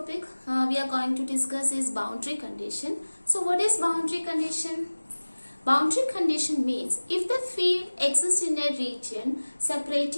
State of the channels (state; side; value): inverted; both; correlation -1.00